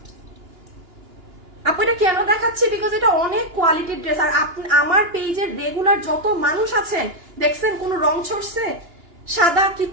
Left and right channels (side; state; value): left; late; 2.9 ms